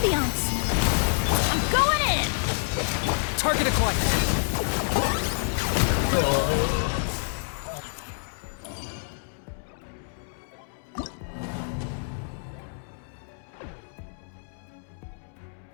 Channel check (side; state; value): right; silent; digital silence